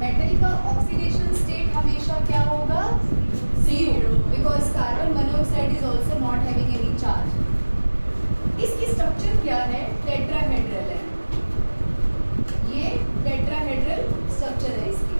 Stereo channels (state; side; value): inverted; both; correlation -1.00